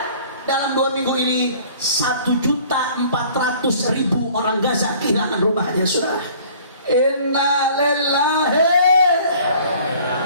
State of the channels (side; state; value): both; inverted; correlation -0.52